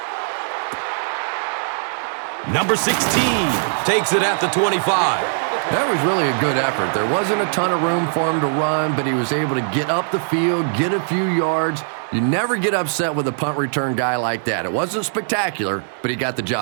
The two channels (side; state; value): left; silent; digital silence